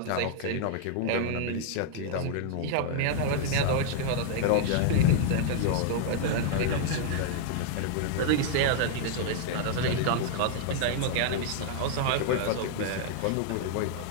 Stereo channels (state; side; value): different; both; correlation -0.01